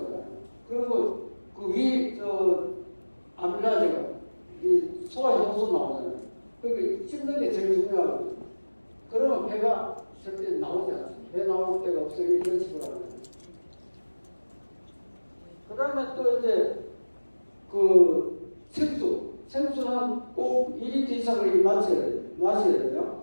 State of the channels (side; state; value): both; inverted; correlation -1.00